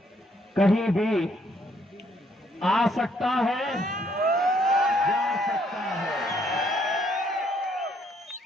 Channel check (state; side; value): normal; both; correlation 0.69